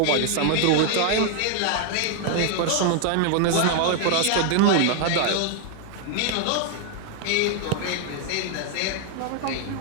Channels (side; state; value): both; different; correlation 0.00